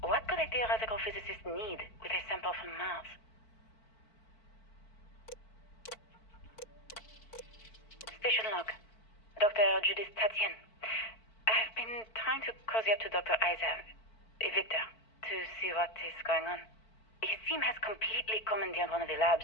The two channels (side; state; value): right; late; 4.5 ms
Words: What could a theoretical physicist need with a sample from Mars? Station log. Dr. Judith Tatien. I've been trying to cozy up to Dr. Isa, Victor, to see what is going on. His team has completely commandeered one of the labs